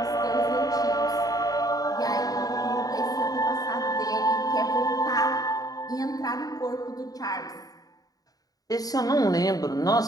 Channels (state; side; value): late; right; 0.18 ms